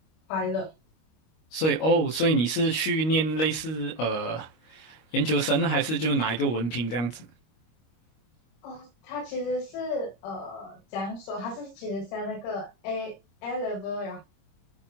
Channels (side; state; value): right; late; 25 ms